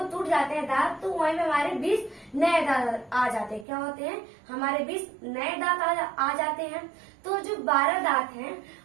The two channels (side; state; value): left; drops out; at 3.7 s